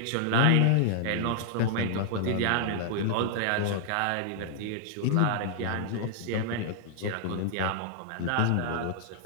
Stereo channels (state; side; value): different; both; correlation 0.00